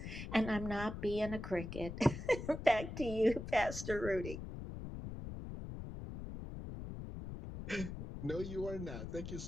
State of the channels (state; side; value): noise; left; rumble, 8 dB below the sound